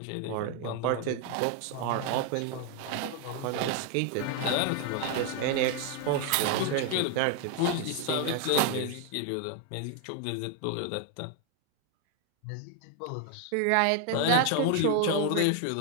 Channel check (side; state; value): both; different; correlation 0.00